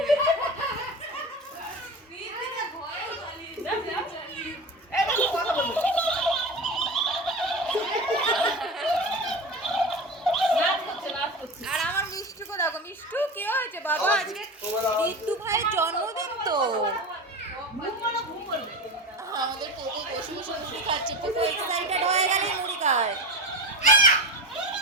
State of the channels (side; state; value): both; normal; correlation 0.26